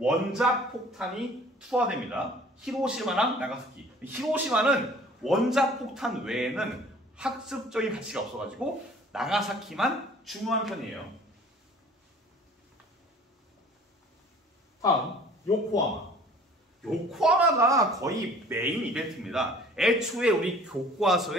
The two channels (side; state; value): both; normal; correlation 0.51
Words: 투하됩니다. 히로시마랑 나가사키. 히로시마는 원자폭탄 외에는 학습적인 가치가 없어가지고 나가사키만 중요한 편이에요. 다음 요코하마. 요코하마가 거의 메인 이벤트입니다. 애초에 우리